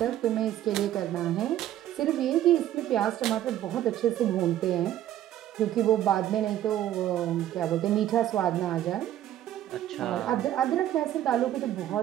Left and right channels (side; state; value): left; quieter; 12.3 dB